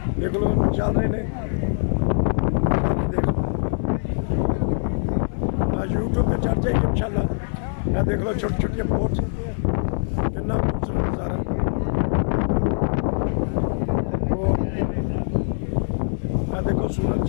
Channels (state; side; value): silent; right; 63 dB below the other